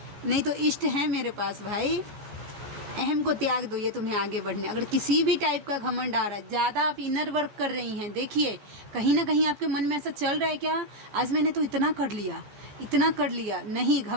नहीं तो इष्ट है मेरे पास भाई। अहम को त्याग दो, ये तुम्हें आगे बढ़ने। अगर किसी भी टाइप का घमंड आ रहा है, ज़्यादा आप इनर वर्क कर रही हैं, देखिए कहीं ना कहीं आपके मन में ऐसा चल रहा है, क्या आज मैंने तो इतना कर लिया। नहीं,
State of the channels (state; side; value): late; left; 14 ms